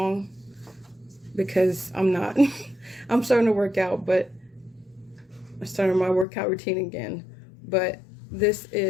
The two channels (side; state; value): right; drops out; at 6.2 s